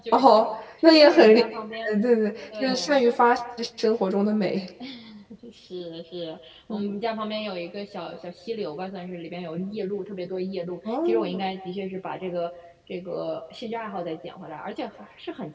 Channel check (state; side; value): identical; both; correlation 1.00